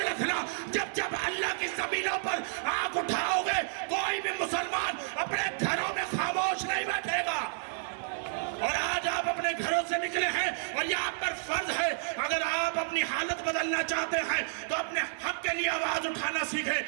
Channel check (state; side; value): silent; left; digital silence